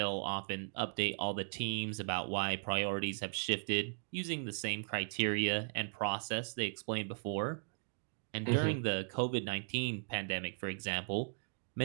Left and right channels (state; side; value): silent; left; digital silence